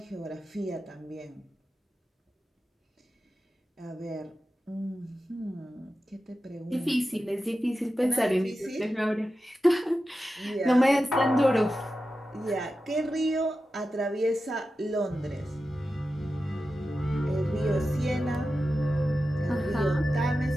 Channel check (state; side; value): normal; both; correlation 0.92